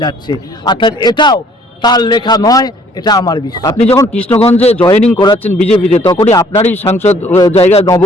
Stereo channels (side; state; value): both; normal; correlation 0.60